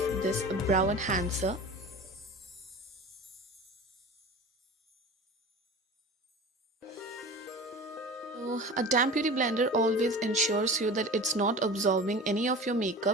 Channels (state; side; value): normal; both; correlation 0.35